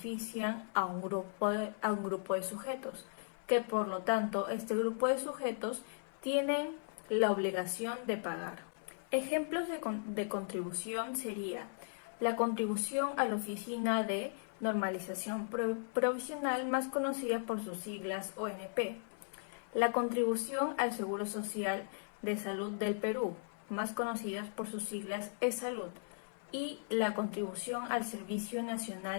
a un grupo de sujetos, que por lo tanto este grupo de sujetos tienen la obligación de pagar. Ejemplos de contribución sería la contribución a la Oficina de Normalización Provisional, más conocida por sus siglas ONP, la contribución al Seguro Social de Salud del Perú, más conocidas por sus siglas eSalud, y la contribución al Servicio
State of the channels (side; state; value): right; silent; 53 dB below the other